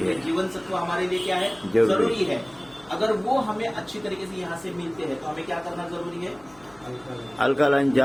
है। जीवन सत्व हमारे लिए क्या है, जरूरी है। अगर वो हमें अच्छी तरीके से यहाँ से मिलते हैं तो हमें क्या करना जरूरी है, अल्कलाइन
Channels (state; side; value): noise; left; hum, 27 dB below the sound